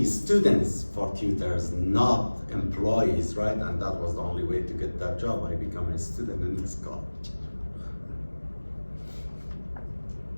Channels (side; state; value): both; inverted; correlation -1.00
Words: students for tutors, not employees, right? And that was the only way to get that job. I became a student in this college.